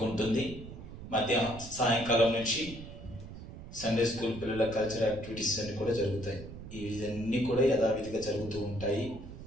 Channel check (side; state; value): right; noise; rumble, 13 dB below the sound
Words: సాయంకాలం నుంచి సండే స్కూల్ పిల్లల కల్చరల్ యాక్టివిటీస్ అన్నీ కూడా జరుగుతాయి. ఇవన్నీ కూడా యథావిధిగా జరుగుతూ ఉంటాయి.